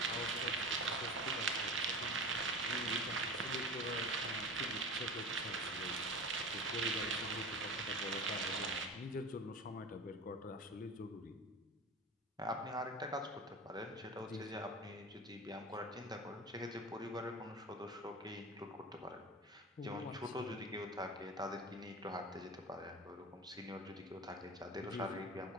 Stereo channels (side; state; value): both; normal; correlation 0.31